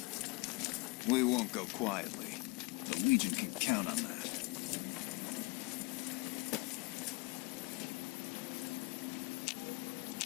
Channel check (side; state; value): right; quieter; 26.7 dB